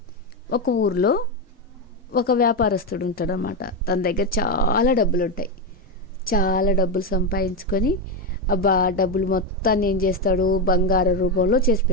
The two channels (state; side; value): normal; both; correlation 0.10